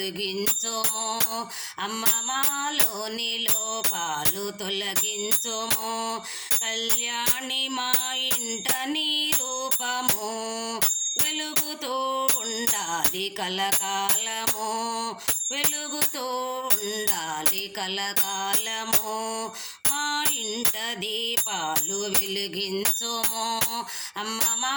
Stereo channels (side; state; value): both; identical; correlation 1.00